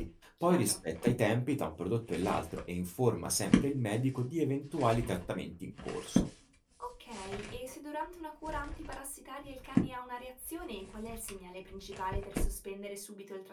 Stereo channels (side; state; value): both; identical; correlation 1.00